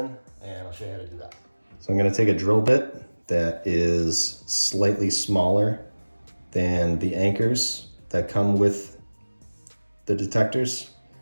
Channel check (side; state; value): both; inverted; correlation -1.00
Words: and I'll show you how to do that. So I'm gonna take a drill bit that is slightly smaller than the anchors that come with the detectors,